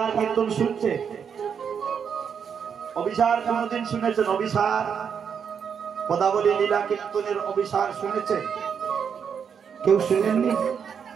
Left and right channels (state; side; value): quieter; left; 7.1 dB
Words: কীর্তন শুনছে? অভিসার কোনদিন শুনেছেন? অভিসার পদাবলী লীলা কীর্তনের অভিসার শুনেছেন? কেউ শুনেননি?